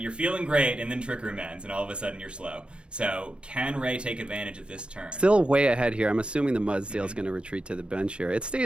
You're feeling great, and then Trick Room ends, and all of a sudden you're slow. So can Ray take advantage of this turn? Still way ahead here. I'm assuming the Mudsdale's going to retreat to the bench here. It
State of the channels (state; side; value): late; left; 0.056 ms